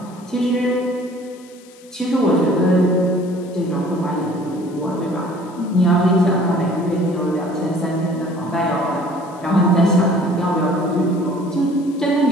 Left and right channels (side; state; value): left; noise; hiss, 26 dB below the sound